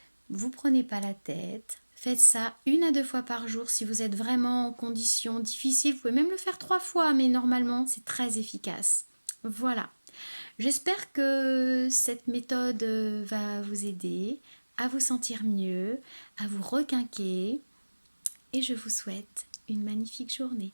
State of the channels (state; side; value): inverted; both; correlation -1.00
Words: Vous prenez pas la tête. Faites ça 1 à 2 fois par jour si vous êtes vraiment en conditions difficiles. Vous pouvez même le faire 3 fois, mais normalement, c'est très efficace. Voilà. J'espère que cette méthode va vous aider à vous sentir mieux, à vous requinquer. Et je vous souhaite une magnifique journée.